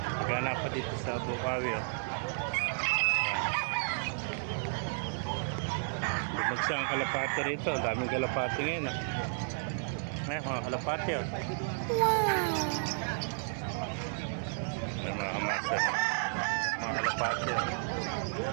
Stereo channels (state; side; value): silent; left; 56 dB below the other